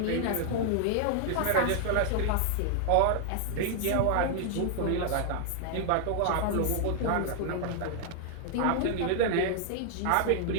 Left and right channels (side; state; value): both; different; correlation 0.00